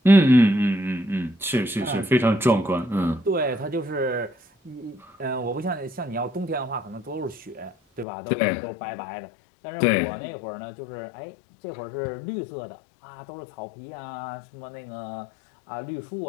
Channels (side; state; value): right; drops out; at 8.1 s